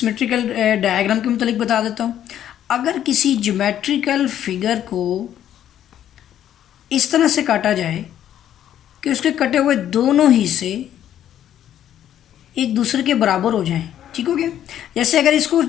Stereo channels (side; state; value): right; quieter; 10.9 dB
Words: डायग्राम के मुतालिक बता देता हूँ। अगर किसी ज्योमेट्रिकल फिगर को इस तरह से काटा जाए कि उसके कटे हुए दोनों हिस्से एक दूसरे के बराबर हो जाएं। ठीक हो गया, जैसे अगर इसको